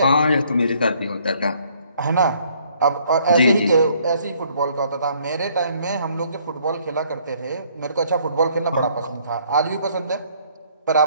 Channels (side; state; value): both; inverted; correlation -0.64